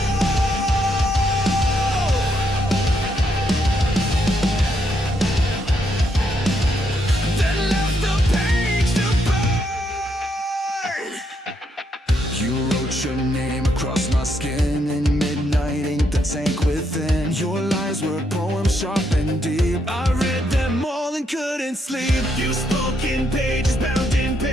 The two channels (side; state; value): both; normal; correlation 0.77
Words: then left the page to burn. You wrote your name across my skin in midnight ink, the tank within. Your lies were poems sharp and deep. I read them all and couldn't sleep. You spoke in pages bound in